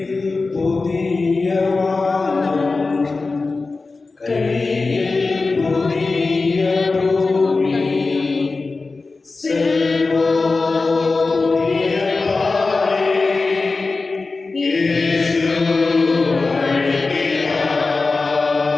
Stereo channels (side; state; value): right; quieter; 3.8 dB